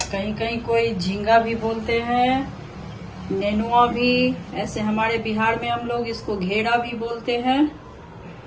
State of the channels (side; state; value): both; identical; correlation 1.00